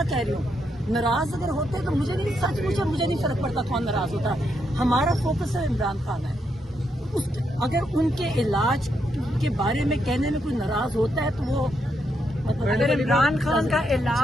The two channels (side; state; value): both; normal; correlation 0.79